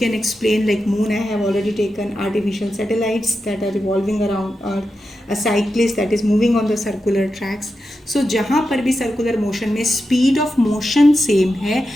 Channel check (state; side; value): normal; both; correlation 0.89